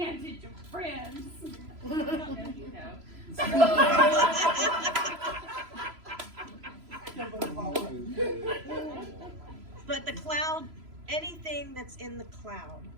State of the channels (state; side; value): late; left; 3.0 ms